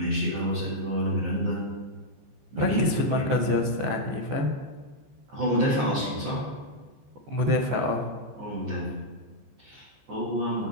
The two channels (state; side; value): late; left; 14 ms